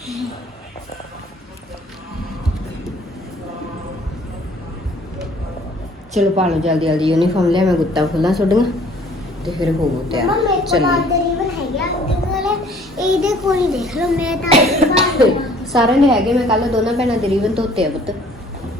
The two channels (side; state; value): both; normal; correlation 0.55